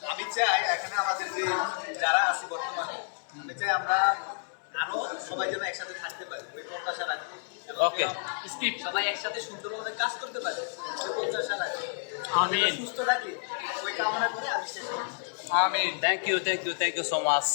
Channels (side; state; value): right; silent; digital silence